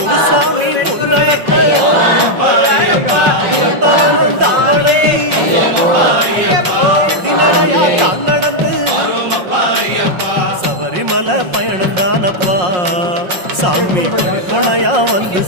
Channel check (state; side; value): late; left; 5.6 ms